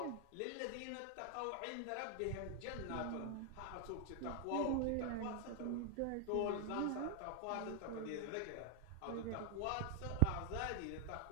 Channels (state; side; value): different; both; correlation 0.00